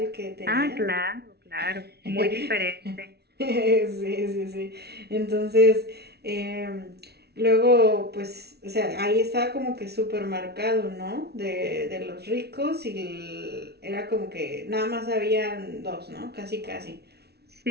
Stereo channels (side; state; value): left; late; 0.48 ms